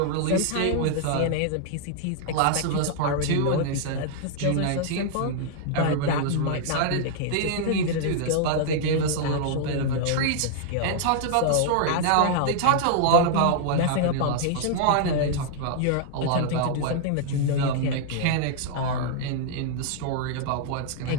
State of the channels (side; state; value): both; different; correlation -0.01